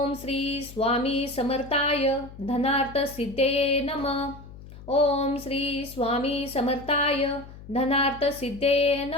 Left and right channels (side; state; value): left; noise; hum, 17 dB below the sound